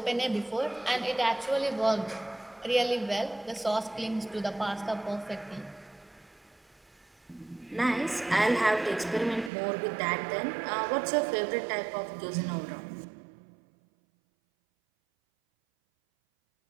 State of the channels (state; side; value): drops out; left; at 9.5 s